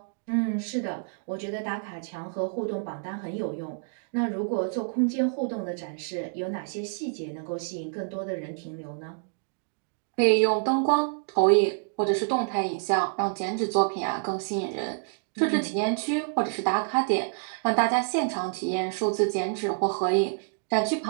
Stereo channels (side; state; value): left; silent; digital silence